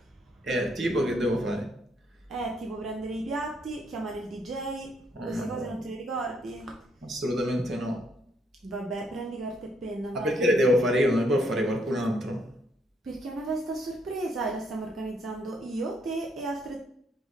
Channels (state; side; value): normal; both; correlation 0.72